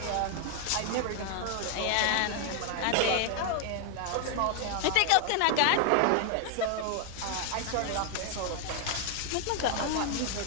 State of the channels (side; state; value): both; different; correlation 0.00